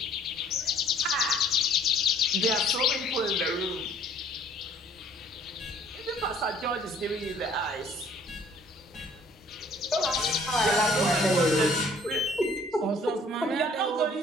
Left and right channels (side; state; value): both; normal; correlation 0.57